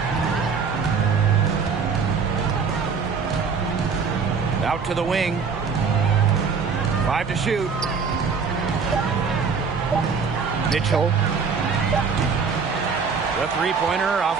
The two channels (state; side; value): quieter; left; 5.6 dB